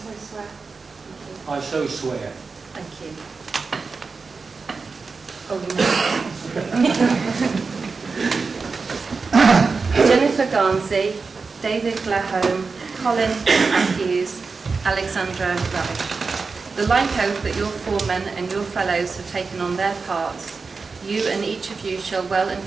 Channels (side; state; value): left; quieter; 4.5 dB